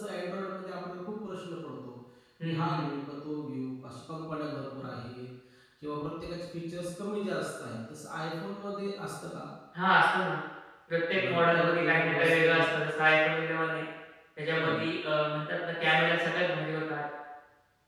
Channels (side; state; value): both; identical; correlation 1.00